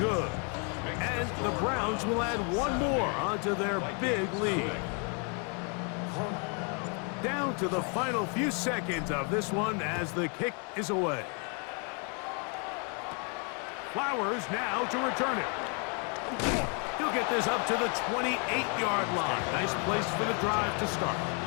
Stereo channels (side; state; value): right; quieter; 36.9 dB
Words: And the Browns will add 1 more onto their big lead. Down to the final few seconds of this one as the kick is away. Flowers now to return it. He'll get this up to the 28-yard line. Nice place for the drive to start.